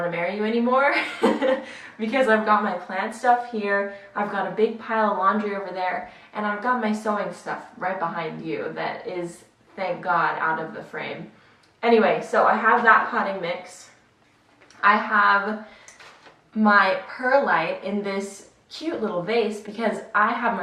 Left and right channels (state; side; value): identical; both; correlation 1.00